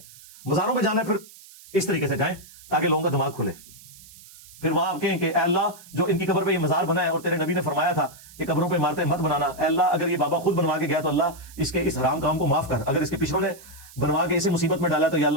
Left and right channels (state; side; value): noise; right; hiss, 21 dB below the sound